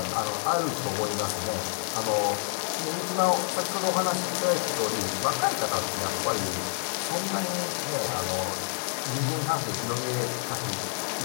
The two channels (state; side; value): silent; right; 59 dB below the other